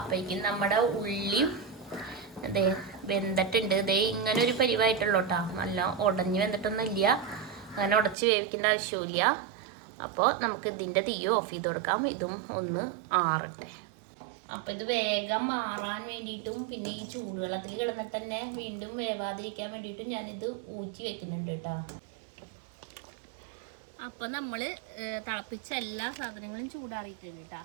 നമ്മുടെ ഉള്ളിയും അതേ വെന്തിട്ടുണ്ട്. ഇതേ ഇങ്ങനെ ഒരു പരിവായിട്ടുള്ളൂ കേട്ടോ. നല്ല ഉടഞ്ഞ് വെന്തിട്ടൊന്നും ഇല്ല, അങ്ങനെ ഉടച്ച് വേവിക്കേണ്ട ആവശ്യമില്ല. അപ്പോൾ നമുക്ക് ഇതിൻ്റെ തീ ഓഫ് ചെയ്ത് കൊടുക്കാം. ഇതും ഒന്ന് ആറട്ടെ. അപ്പോൾ ഇത് വേഗം മാറാൻ വേണ്ടിയിട്ടും പിന്നെ ഈ ചൂടുവെള്ളത്തിൽ കിടന്നിട്ട് തന്നെ വീണ്ടും വേവാതിരിക്കാൻ വേണ്ടിയിട്ടും ഞാനിത് ഊറ്റി വെക്കുന്നുണ്ട് കേട്ടോ. അപ്പോൾ നമ്മൾ തിളപ്പിച്ച എല്ലാ സാധനങ്ങളും ചൂടാറിയിട്ടുണ്ട് കേട്ടോ.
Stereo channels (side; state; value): left; drops out; at 8.2 s